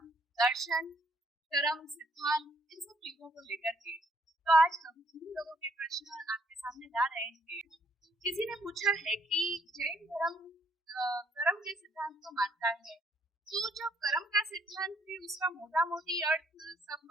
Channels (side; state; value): both; normal; correlation 0.68